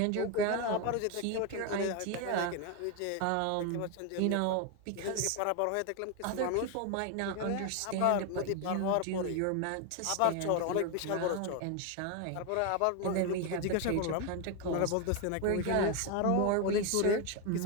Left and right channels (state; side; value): different; both; correlation 0.01